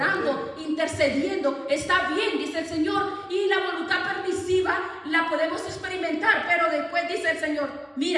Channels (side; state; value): both; identical; correlation 1.00